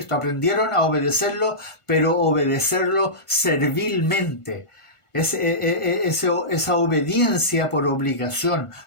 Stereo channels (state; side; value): late; right; 1.5 ms